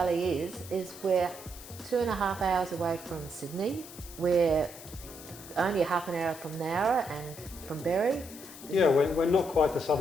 is we're 2.5 hours away from Sydney. We're only half an hour from Nowra and from Berry. Yeah, we're not quite the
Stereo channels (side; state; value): left; noise; hiss, 16 dB below the sound